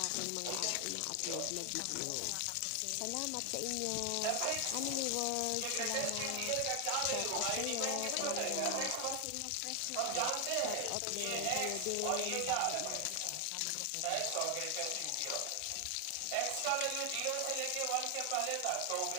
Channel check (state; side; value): different; both; correlation 0.00